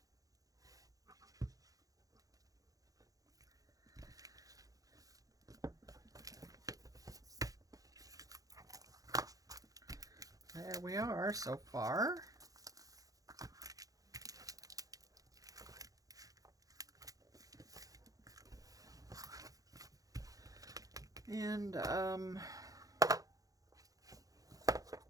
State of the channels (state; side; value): late; left; 0.17 ms